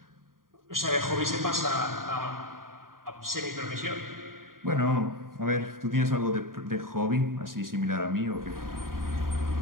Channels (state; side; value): late; left; 0.91 ms